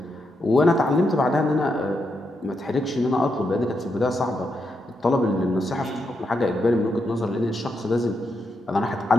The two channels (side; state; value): both; normal; correlation 0.82